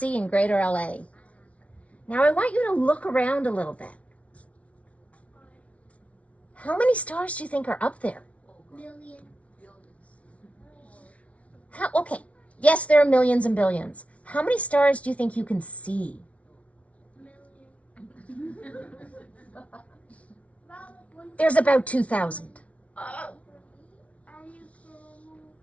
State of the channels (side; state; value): right; late; 0.064 ms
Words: in greater LA. Now I want you to look around a little bit. How many stars do you think are up there? Okay, yes, there are millions and billions. How many stars do you think you can see? There's about 2,000.